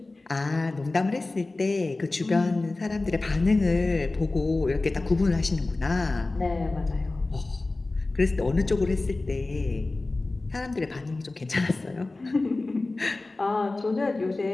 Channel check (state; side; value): quieter; right; 3.2 dB